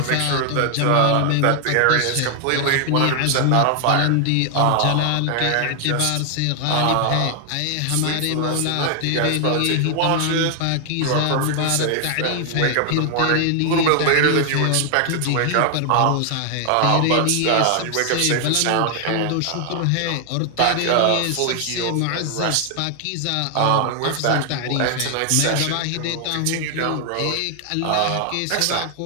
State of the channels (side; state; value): both; different; correlation 0.00